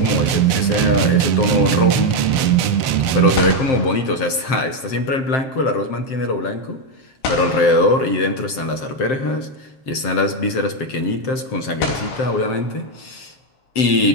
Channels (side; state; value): right; late; 7.6 ms